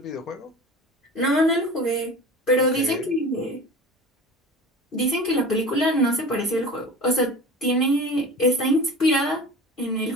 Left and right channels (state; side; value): normal; both; correlation 0.36